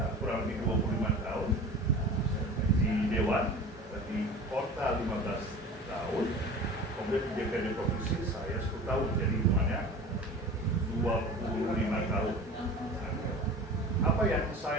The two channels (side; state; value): both; normal; correlation 0.38